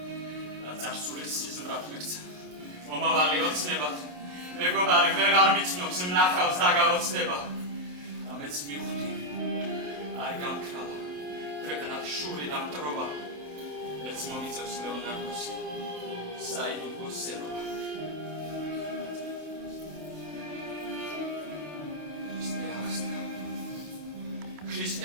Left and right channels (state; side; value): late; left; 27 ms